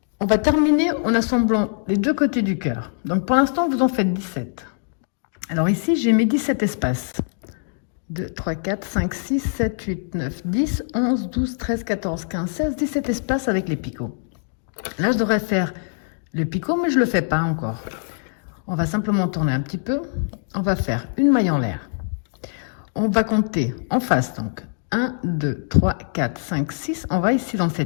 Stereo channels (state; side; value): silent; right; 63 dB below the other